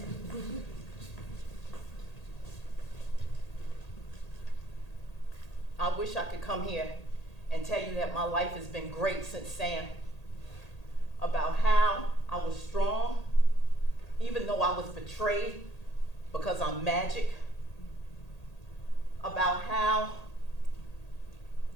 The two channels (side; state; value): right; late; 1.8 ms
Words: I wish I could come here and tell you that my life has been great since Sam. About how I was strong, even though I was betrayed because I'm magic. About how